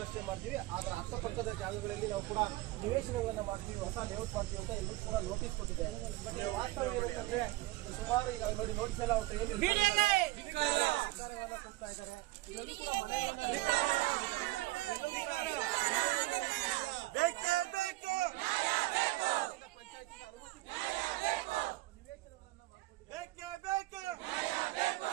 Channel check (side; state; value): left; quieter; 19.1 dB